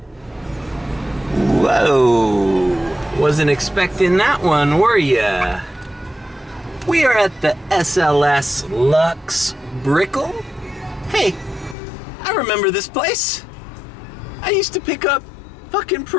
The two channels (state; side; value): drops out; right; at 11.8 s